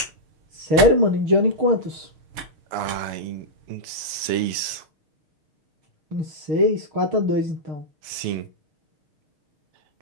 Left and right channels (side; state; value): left; late; 6.8 ms